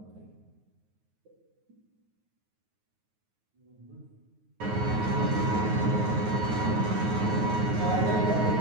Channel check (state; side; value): late; left; 9.4 ms